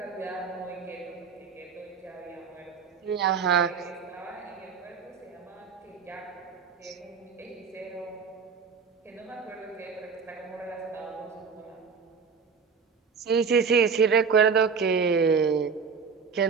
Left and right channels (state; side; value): quieter; left; 5.8 dB